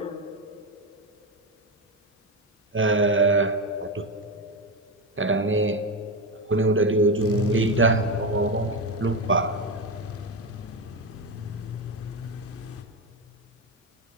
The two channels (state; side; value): normal; both; correlation 0.13